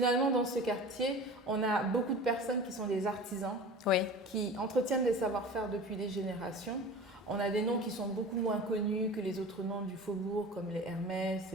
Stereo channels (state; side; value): normal; both; correlation 0.37